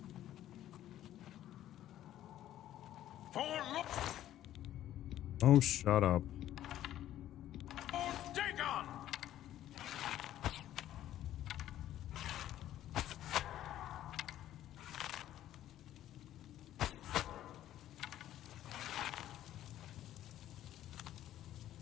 Oh, shut up. Dagon!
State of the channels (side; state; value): right; quieter; 12.6 dB